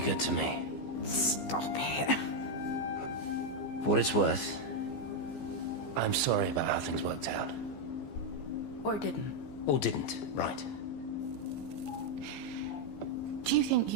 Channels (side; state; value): right; late; 15 ms